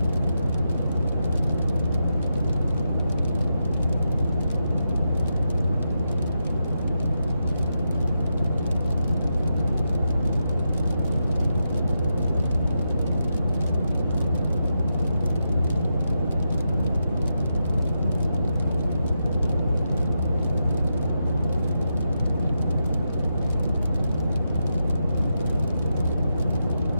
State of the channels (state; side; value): inverted; both; correlation -0.85